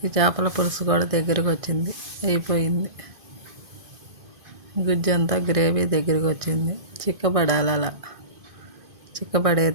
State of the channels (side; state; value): left; late; 2.5 ms